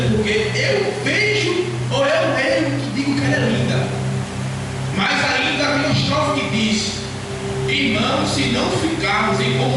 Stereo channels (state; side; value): identical; both; correlation 1.00